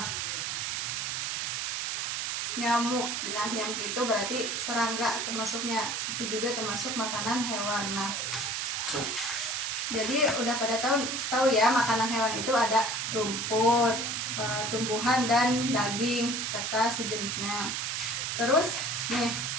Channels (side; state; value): right; noise; hiss, 1 dB below the sound